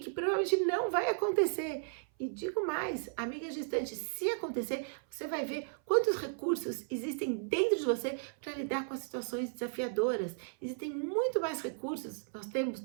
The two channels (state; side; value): silent; left; 55 dB below the other